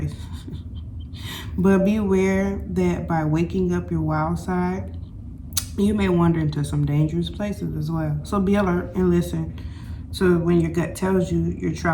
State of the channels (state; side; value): identical; both; correlation 1.00